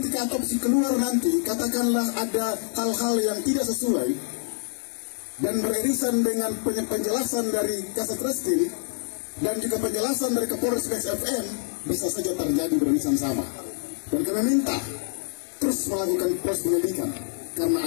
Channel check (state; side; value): silent; right; digital silence